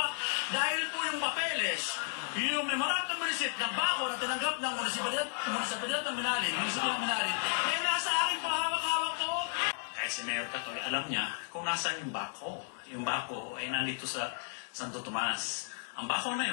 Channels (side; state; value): right; silent; 55 dB below the other